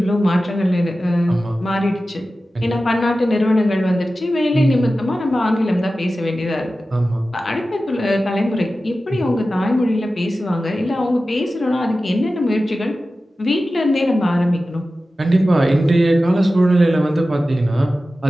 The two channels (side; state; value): both; normal; correlation 0.94